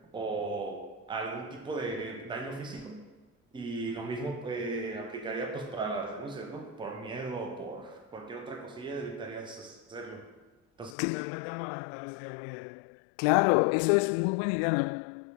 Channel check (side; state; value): right; drops out; at 11.0 s